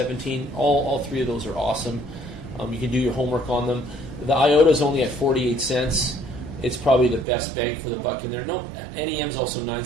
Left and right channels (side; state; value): left; drops out; at 7.2 s